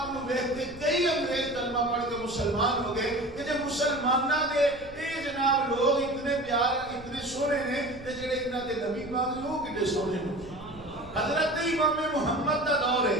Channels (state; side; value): noise; right; rumble, 20 dB below the sound